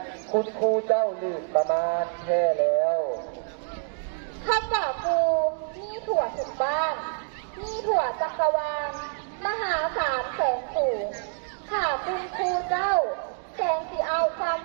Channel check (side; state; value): left; silent; 60 dB below the other